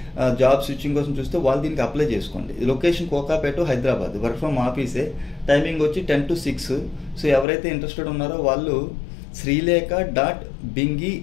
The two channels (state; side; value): drops out; right; at 7.5 s